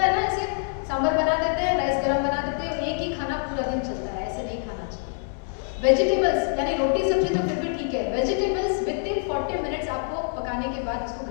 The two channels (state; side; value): silent; right; 61 dB below the other